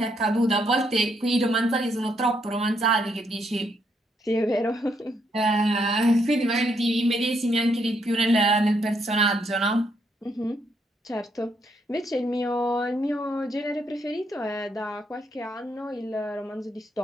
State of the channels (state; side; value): normal; both; correlation 0.75